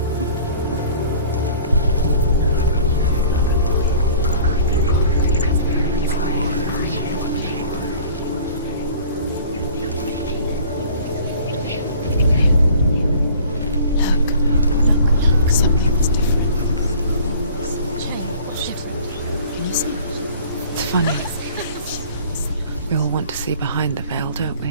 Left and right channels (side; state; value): both; inverted; correlation -0.48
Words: Look. Something's different. Can you see? It's funny. We all want to see behind the veil, don't